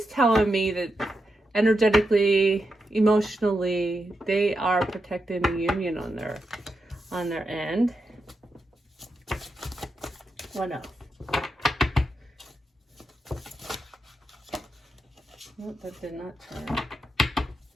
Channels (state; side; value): normal; both; correlation 0.86